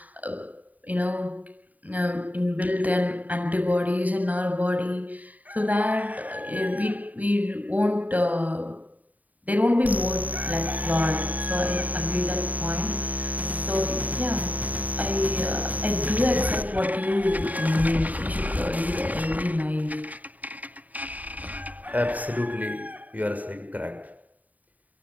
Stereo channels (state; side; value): late; left; 0.075 ms